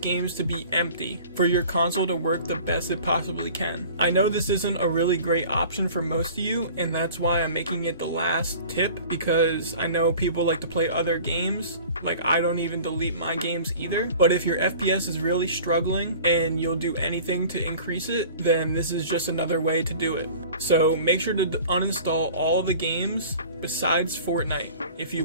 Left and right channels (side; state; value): both; inverted; correlation -0.44